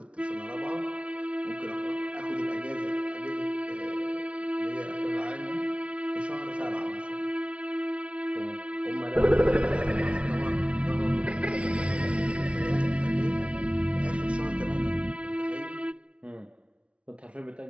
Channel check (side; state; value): left; late; 0.061 ms